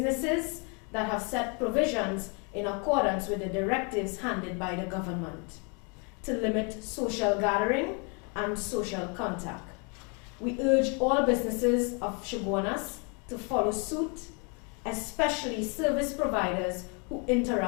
that have set provisions in accordance with the directives handed by the government to limit social gathering and social contact. We urge all businesses of Chaguanas to follow suit, especially service providers who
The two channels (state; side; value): quieter; right; 34.9 dB